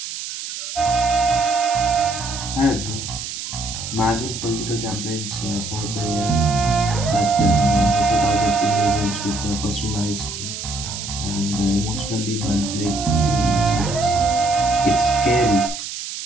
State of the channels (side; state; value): right; noise; hiss, 7 dB below the sound